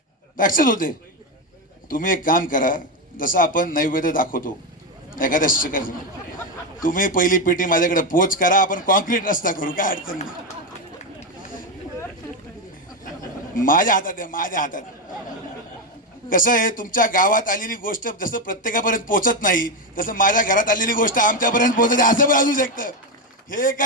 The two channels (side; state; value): both; normal; correlation 0.10